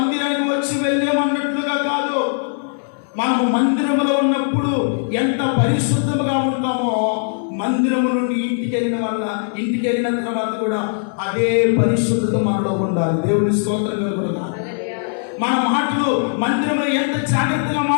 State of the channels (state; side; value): silent; right; digital silence